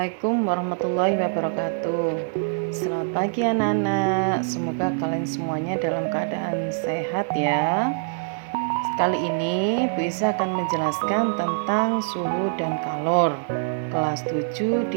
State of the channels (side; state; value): left; silent; digital silence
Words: warahmatullahi wabarakatuh. Selamat pagi anak-anak. Semoga kalian semuanya dalam keadaan sehat ya. Kali ini Bu Isa akan menjelaskan tentang suhu dan kalor kelas 7